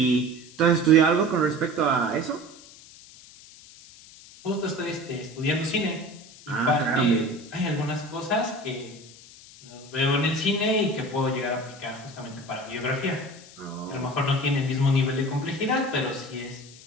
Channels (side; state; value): left; noise; hiss, 20 dB below the sound